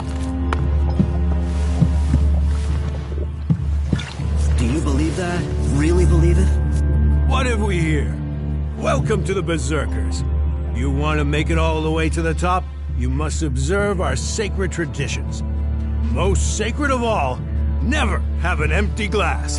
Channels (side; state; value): both; identical; correlation 1.00